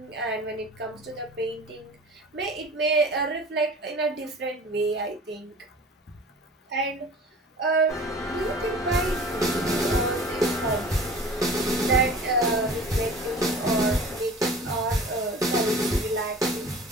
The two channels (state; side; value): normal; both; correlation 0.42